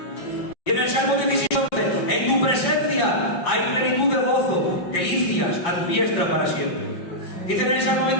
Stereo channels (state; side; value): late; right; 5.8 ms